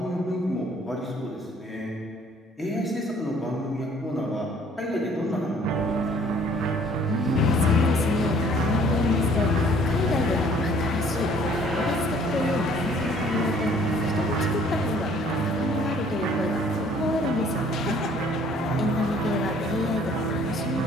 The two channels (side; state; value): both; normal; correlation 0.57